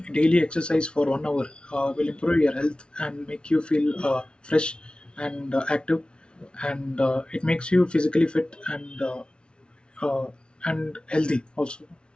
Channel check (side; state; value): right; late; 0.056 ms